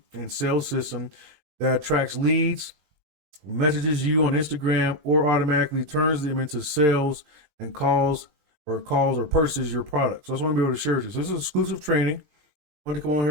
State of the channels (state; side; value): late; left; 20 ms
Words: and sales system that attracts leads, messages you on Instagram, or automatically turns them into sales and calls or purchases your product. So that's what I'm going to be able to share with you. So this is exclusive training. I want to come on